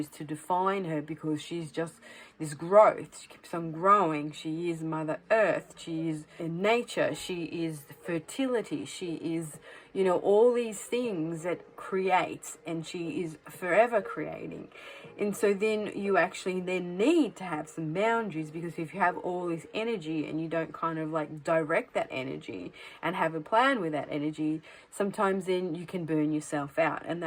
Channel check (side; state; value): both; identical; correlation 1.00